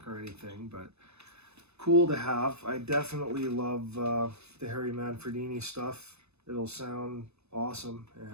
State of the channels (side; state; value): left; late; 0.80 ms